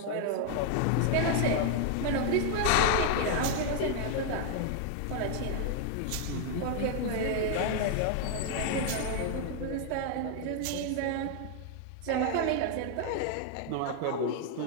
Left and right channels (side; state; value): both; different; correlation 0.00